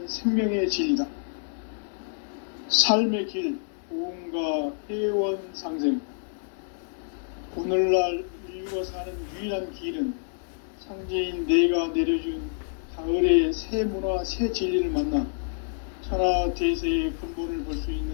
생명의 진리다. 삶의 길, 고음과 회원 상생. 오늘날 인류가 사는 유일한 길은 상제인 내가 내려준 가을의 새 문화, 새 진리를 만나 천하 대세의 근본을 볼 수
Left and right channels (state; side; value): silent; right; 60 dB below the other